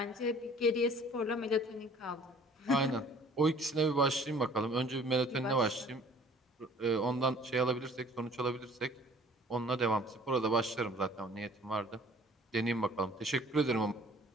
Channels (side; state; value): both; normal; correlation 0.52